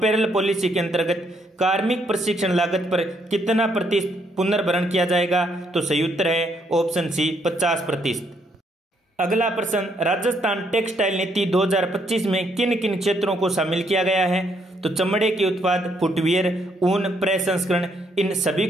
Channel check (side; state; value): both; normal; correlation 0.72